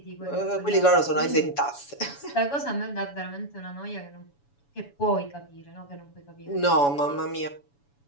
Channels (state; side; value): late; right; 7.1 ms